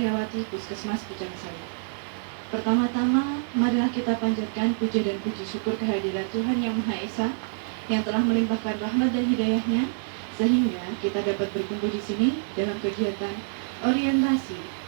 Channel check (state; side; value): silent; left; digital silence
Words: Puskesmas Pucang Sawit. Pertama-tama, marilah kita panjatkan puja dan puji syukur kehadirat Tuhan Yang Maha Esa yang telah melimpahkan rahmat dan hidayahnya sehingga kita dapat berkumpul di sini dalam kegiatan orientasi